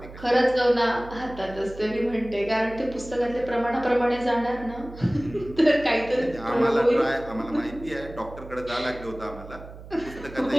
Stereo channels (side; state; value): right; noise; hum, 16 dB below the sound